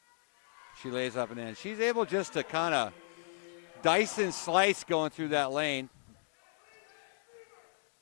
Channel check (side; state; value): right; silent; digital silence